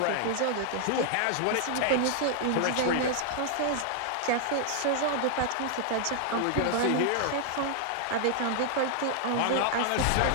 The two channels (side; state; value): both; different; correlation 0.00